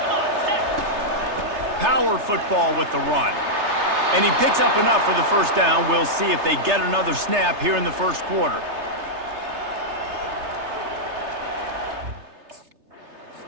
Power football with the run. And he picks up enough for the first down. We'll see if they get another snap here in the first quarter.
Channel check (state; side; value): late; left; 3.3 ms